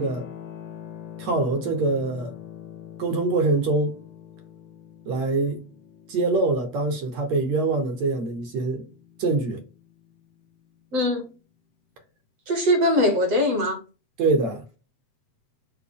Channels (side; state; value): left; late; 7.9 ms